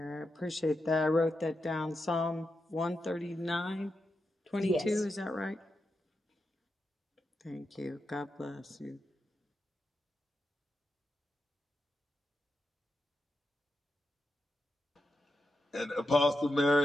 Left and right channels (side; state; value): both; normal; correlation 0.87